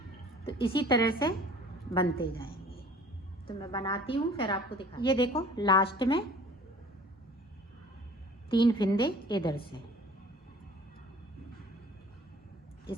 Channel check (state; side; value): normal; both; correlation 0.48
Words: तो इसी तरह से बनते जाएंगे। तो मैं बनाती हूँ फिर आपको दिखा। ये देखो लास्ट में 3 फिंदे इधर से,